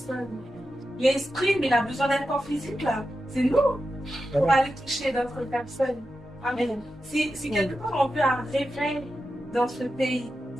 L'esprit, mais il a besoin d'un corps physique, là. C'est nous pour aller toucher d'autres personnes. Amen. Si quelque part on veut un réveil dans ce pays,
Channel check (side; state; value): both; normal; correlation 0.90